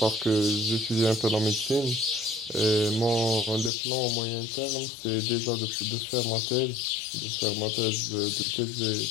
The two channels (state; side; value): drops out; right; at 3.7 s